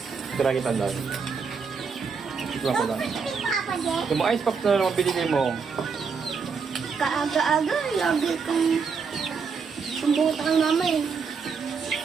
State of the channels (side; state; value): left; quieter; 5.5 dB